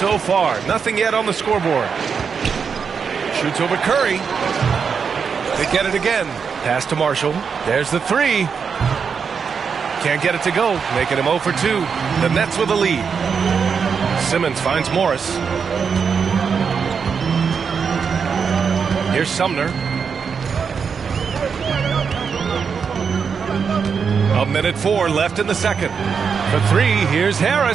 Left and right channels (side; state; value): left; quieter; 6.2 dB